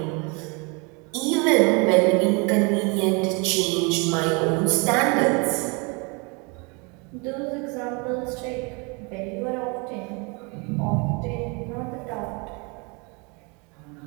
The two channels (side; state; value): left; quieter; 30.9 dB